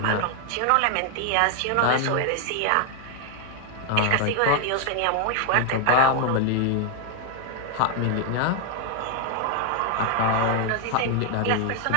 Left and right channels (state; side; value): different; both; correlation 0.00